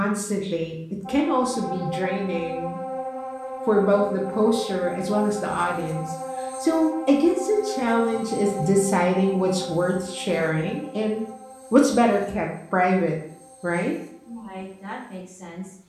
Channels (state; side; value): identical; both; correlation 1.00